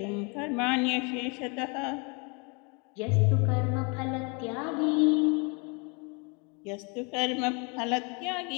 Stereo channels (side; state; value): right; quieter; 32.1 dB